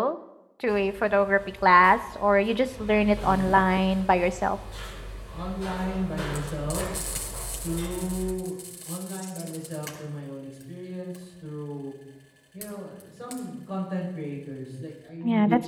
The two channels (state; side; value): identical; both; correlation 1.00